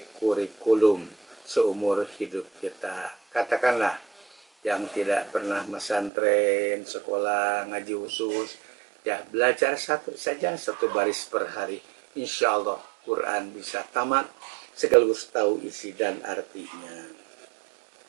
kurikulum seumur hidup kita. Katakanlah yang tidak pernah pesantren, sekolah, ngaji khusus, ya belajar 1 saja 1 baris per hari. Insya Allah Quran bisa tamat sekaligus tahu isi dan artinya.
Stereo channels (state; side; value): drops out; left; at 6.1 s